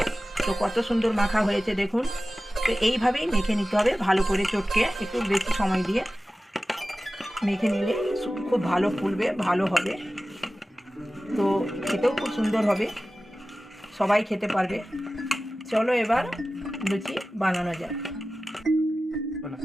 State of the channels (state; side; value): normal; both; correlation 0.96